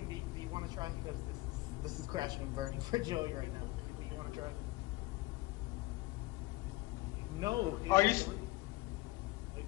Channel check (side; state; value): right; quieter; 20.0 dB